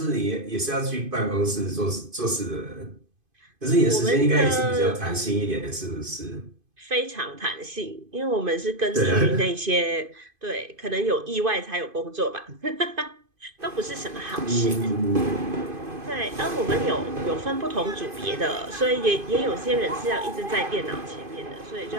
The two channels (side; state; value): left; late; 2.5 ms